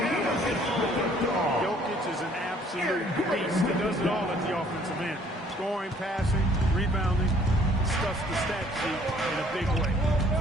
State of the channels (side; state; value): both; normal; correlation 0.59